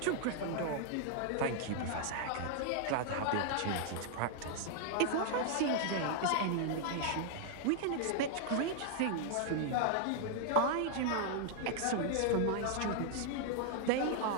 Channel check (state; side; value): different; both; correlation 0.00